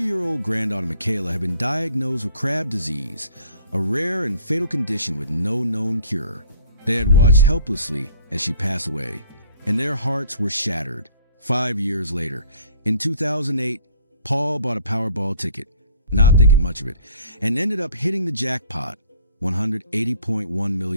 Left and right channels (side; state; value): both; inverted; correlation -0.53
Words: granddaughter Michaela had been diagnosed with Crab disease, a rare and fatal condition with no known cure. They had watched helplessly as she passed away, and their hearts were shattered. 5 years later, in 2008, Paul bought a Powerball ticket, not thinking much of it, and ended up hitting the jackpot, $180.1